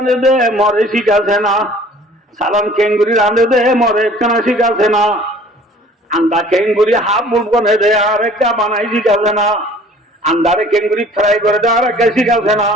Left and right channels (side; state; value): both; normal; correlation 0.51